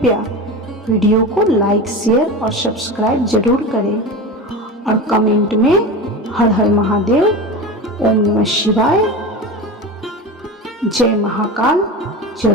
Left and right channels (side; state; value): both; normal; correlation 0.27